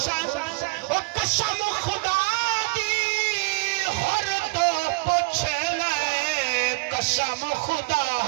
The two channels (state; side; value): quieter; left; 27.4 dB